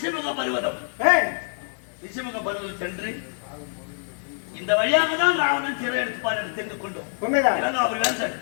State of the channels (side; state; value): right; silent; 62 dB below the other